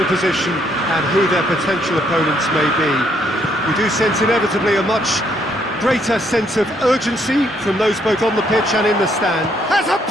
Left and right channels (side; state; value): both; normal; correlation 0.70